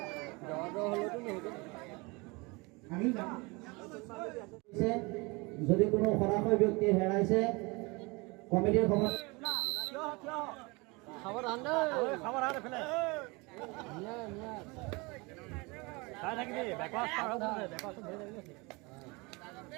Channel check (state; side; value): quieter; left; 26.6 dB